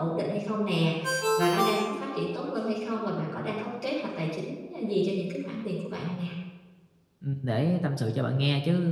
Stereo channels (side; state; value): both; identical; correlation 1.00